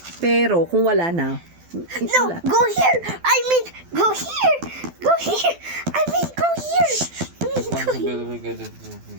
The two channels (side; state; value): left; late; 12 ms